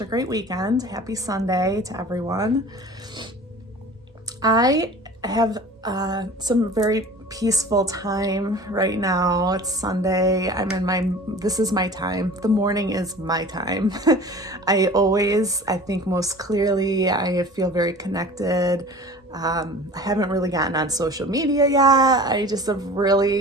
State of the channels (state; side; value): normal; both; correlation 0.41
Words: a great weekend. Happy Sunday to everyone. I have some very peaceful time right now. It's Sunday. This is my time. The morning is my time. I think most clearly, I feel very connected. I haven't really gotten on social media yet. I just have